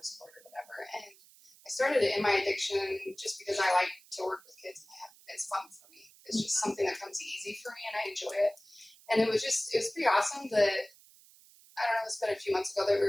court or whatever. And I started it in my addiction just because I like to work with kids it's fun for me. It's just something that comes easy for me, and I enjoy it. And it was pretty awesome that, I don't know, it's been a few months ago that we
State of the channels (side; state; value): right; noise; hiss, 25 dB below the sound